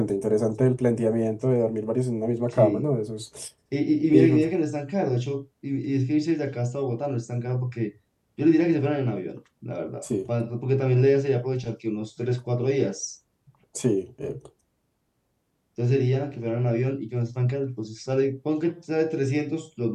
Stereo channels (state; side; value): identical; both; correlation 1.00